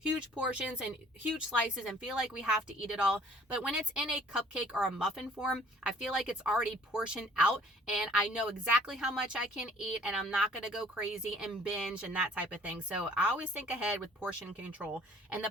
portions and huge slices and feel like we have to eat it all. But when it's in a cupcake or a muffin form, I feel like it's already portioned out and I know exactly how much I can eat and I'm not going to go crazy and binge and that type of thing. So I always think ahead with portion control. And the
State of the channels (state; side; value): normal; both; correlation 0.55